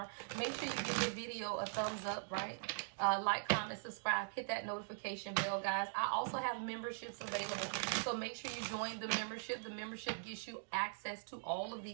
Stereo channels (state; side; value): silent; left; digital silence